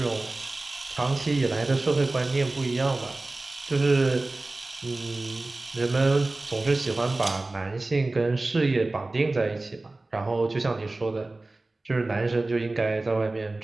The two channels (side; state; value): left; quieter; 3.0 dB